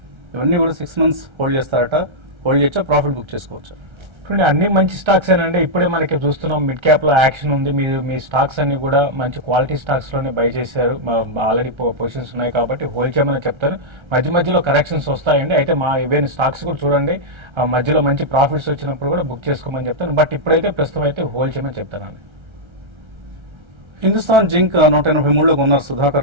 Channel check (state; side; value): late; left; 1.3 ms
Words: ఇవన్నీ కూడా 6 months హోల్డ్ చేస్తారట. హోల్డ్ చేయొచ్చా, ప్రాఫిట్ బుక్ చేసుకోవచ్చా? చూడండి, అన్ని మంచి స్టాక్స్ ఏనండి. ఇప్పుడే మనకి చూస్తున్నాం మిడ్ క్యాప్ లో యాక్షన్ ఉంది. మీరు మీ స్టాక్స్ అన్ని కూడా మంచి క్వాలిటీ స్టాక్స్ లోనే బై చేశారు. ఆల్రెడీ పొజిషన్స్ ఉన్నాయి కాబట్టి హోల్డ్ చేయమని చెప్తారు. మధ్య మధ్యలో కరెక్షన్స్ వస్తాయండి. అయితే మా ఈవెన్ స్టాక్స్ కూడా చూడండి, మధ్యలో మంచి ప్రాఫిట్స్ వచ్చినప్పుడు కూడా బుక్ చేసుకోమని చెప్తాను. బట్ ఇప్పుడైతే ప్రస్తుతం అయితే హోల్డ్ చేయమని చెప్తానండి. హిందుస్థాన్ జింక్ 183లో కొన్నారు